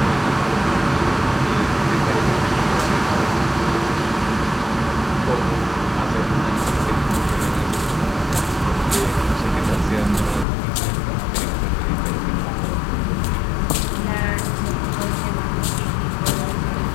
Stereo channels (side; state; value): right; drops out; at 10.5 s